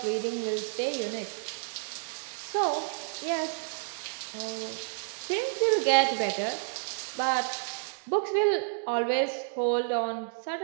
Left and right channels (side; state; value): left; silent; digital silence